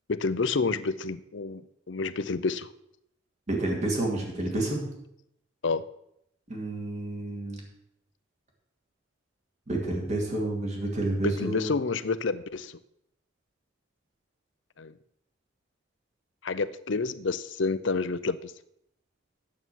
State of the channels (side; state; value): both; normal; correlation 0.28